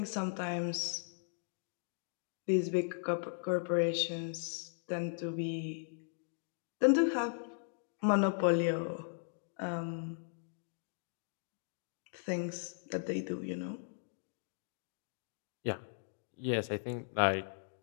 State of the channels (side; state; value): right; silent; digital silence